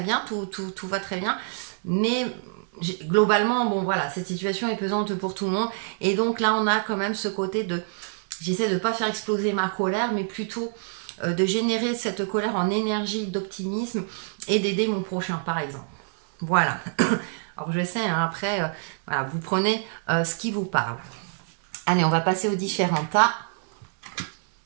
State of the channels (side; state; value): left; silent; digital silence